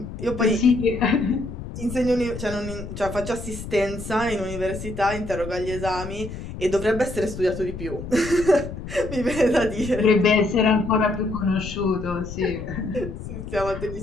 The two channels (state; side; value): noise; left; rumble, 9 dB below the sound